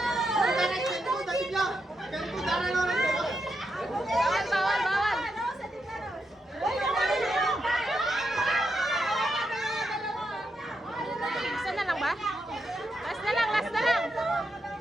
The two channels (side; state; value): both; normal; correlation 0.83